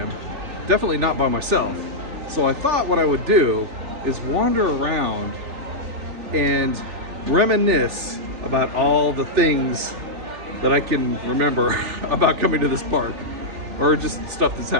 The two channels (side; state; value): left; late; 3.4 ms